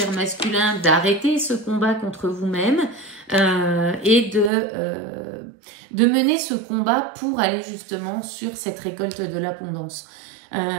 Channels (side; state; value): left; drops out; at 4.5 s